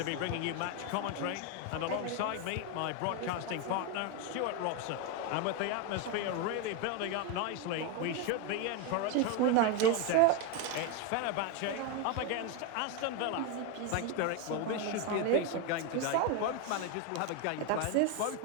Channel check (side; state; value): both; different; correlation 0.02